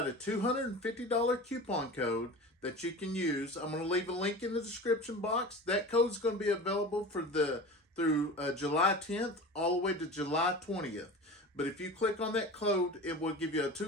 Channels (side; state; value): both; normal; correlation 0.33